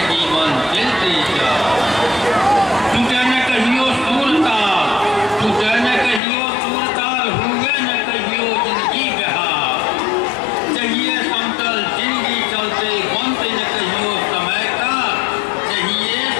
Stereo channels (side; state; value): right; drops out; at 6.2 s